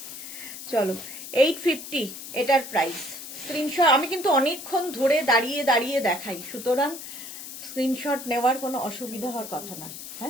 চলো 850 এটার প্রাইস। স্ক্রিনশট, আমি কিন্তু অনেকক্ষণ ধরে দাঁড়িয়ে দেখাই, সুতরাং স্ক্রিনশট নেওয়ার কোনো অসুবিধা হওয়ার কথা না।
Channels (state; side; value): noise; left; hiss, 11 dB below the sound